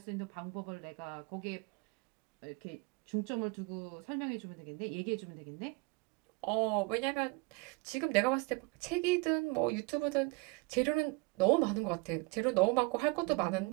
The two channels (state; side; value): quieter; left; 26.6 dB